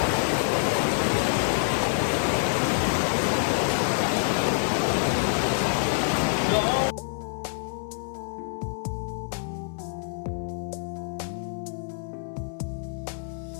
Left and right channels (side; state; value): right; silent; 60 dB below the other